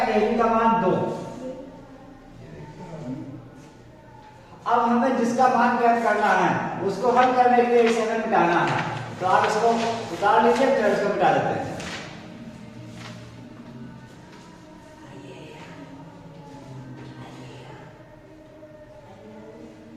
AB का मान 2। अब हमें जिसका मान ज्ञात करना है उसको हल करने के लिए इसे हमें मिटाना है, तो आप इसको उतार लीजिए, फिर इसको मिटा देते हैं।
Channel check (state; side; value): identical; both; correlation 1.00